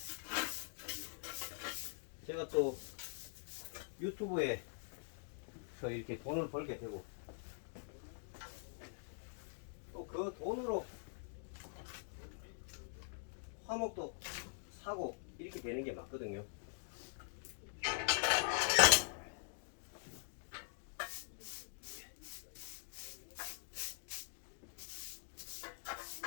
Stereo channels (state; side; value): silent; right; digital silence